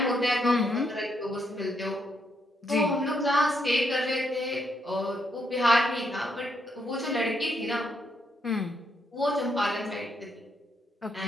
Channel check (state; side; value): normal; both; correlation 0.77